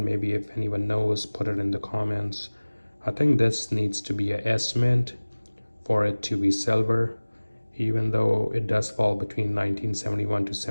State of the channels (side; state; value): both; inverted; correlation -1.00